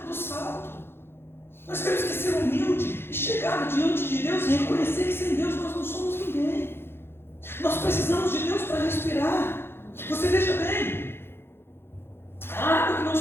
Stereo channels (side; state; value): right; late; 0.11 ms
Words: do salto. Nós temos que ser humilde e chegar diante de Deus e reconhecer que sem Deus nós não somos ninguém. Nós precisamos de Deus para respirar. Você veja bem, a água que nós